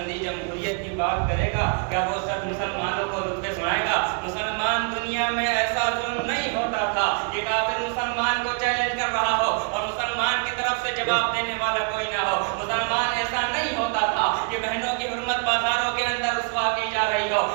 جمہوریت کی بات کرے گا؟ کیا وہ شخص مسلمانوں کو رتبے سنائے گا؟ مسلمان دنیا میں ایسا ظلم نہیں ہوتا تھا کہ کافر مسلمان کو چیلنج کر رہا ہو اور مسلمان کی طرف سے جواب دینے والا کوئی نہ ہو۔ مسلمان ایسا نہیں ہوتا تھا کہ بہنوں کی حرمت بازاروں کے اندر رسوا کی جا رہی ہو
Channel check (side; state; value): left; quieter; 39.2 dB